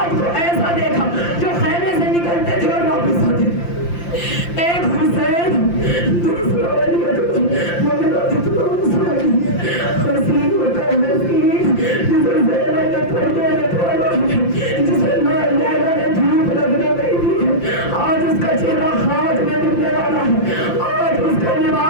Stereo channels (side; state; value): right; late; 5.8 ms